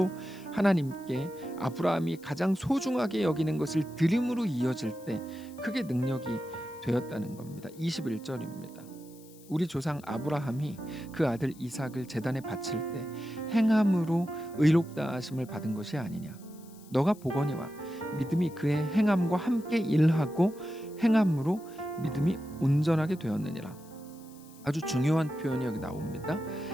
하나님께 아브라함이 가장 소중하게 여기는 것을 드림으로 이어질 때 그게 능력이 되었다는 겁니다. 21절입니다. 우리 조상 아브라함이 그 아들 이삭을 제단에 바칠 때 행함으로 의롭다 하심을 받은 것이 아니냐. 너가 보거니와 믿음이 그의 행함과 함께 일하고 행함으로 믿음이 온전하게 되었느니라. 아주 중요한 표현이 여기 나옵니다.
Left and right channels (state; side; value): noise; left; hiss, 24 dB below the sound